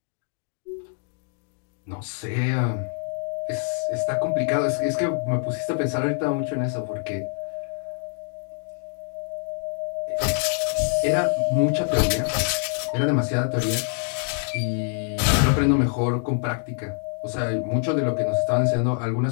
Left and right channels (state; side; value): silent; right; 57 dB below the other